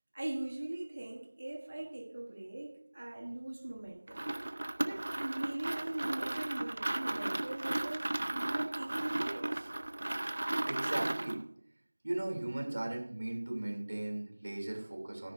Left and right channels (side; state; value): both; inverted; correlation -1.00